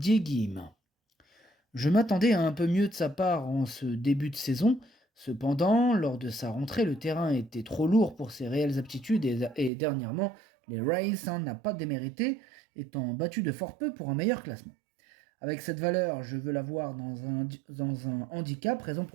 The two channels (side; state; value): left; drops out; at 9.7 s